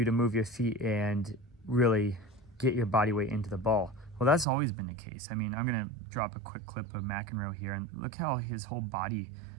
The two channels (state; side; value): drops out; left; at 4.5 s